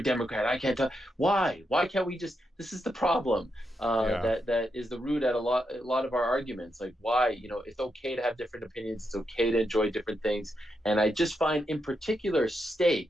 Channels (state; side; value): normal; both; correlation 0.83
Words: Democrat, I can't talk. Why? Why can't we just? This is the problem. That is the root at a lot of our arguments. Like, why? It's okay to have different opinions. It's okay to enjoy different things. And I just find, in particular, steak